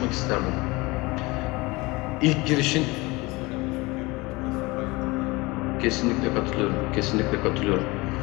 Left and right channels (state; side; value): quieter; right; 23.4 dB